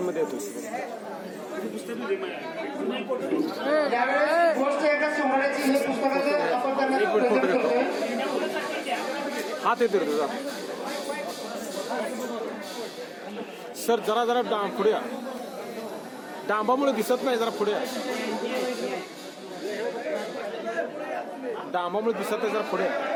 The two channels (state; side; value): identical; both; correlation 1.00